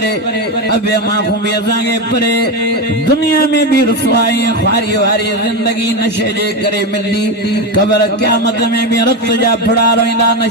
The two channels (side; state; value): both; normal; correlation 0.14